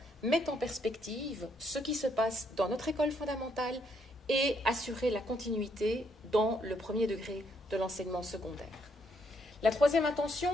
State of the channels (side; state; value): both; normal; correlation 0.73